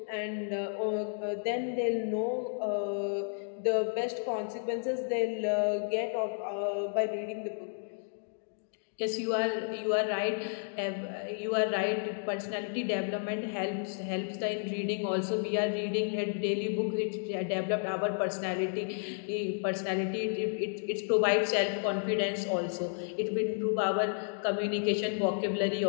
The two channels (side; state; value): right; silent; digital silence